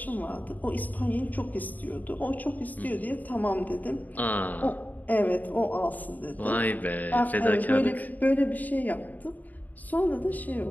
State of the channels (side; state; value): right; late; 0.081 ms